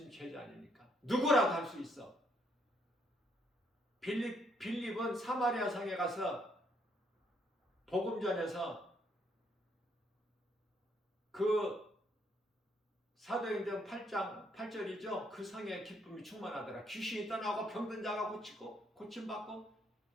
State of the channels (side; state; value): both; normal; correlation 0.71